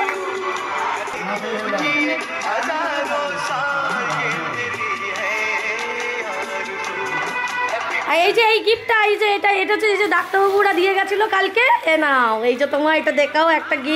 আর এই যে এই গিফটটা এই যে এটা এটা হচ্ছে এই যে ডাক্তারবাবুরা দিয়ে গেছিল কালকে এ নাও এই যে তোমার এটা দেখাও একটা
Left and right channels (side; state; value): both; identical; correlation 1.00